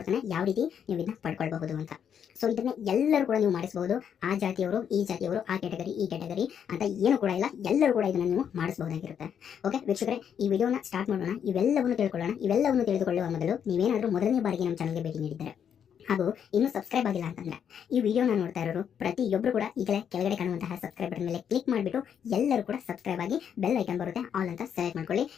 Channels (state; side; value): quieter; right; 8.3 dB